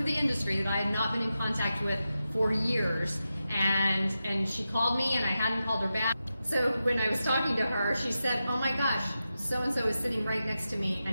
the industry, that I had not been in contact with for years, and she called me, and I hadn't called her back. So when I was talking to her, she said, "Oh my gosh, so-and-so is sitting right next to me,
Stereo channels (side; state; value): both; inverted; correlation -0.91